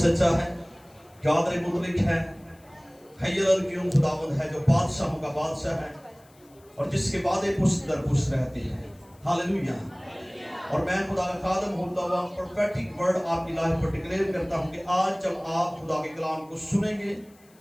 है, कादिर मुतलिक है, हय्युल क़य्यूम खुदावंद है, जो बादशाहों का बादशाह है और जिसके वादे पुष्ट दर पुष्ट रहते हैं। हालेलुया। और मैं खुदा का खादम होता हुआ प्रोफेटिक वर्ड आपकी लाइफ पर डिक्लेयर करता हूँ कि आज जब आप खुदा के कलाम को सुनेंगे,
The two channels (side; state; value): left; noise; hiss, 30 dB below the sound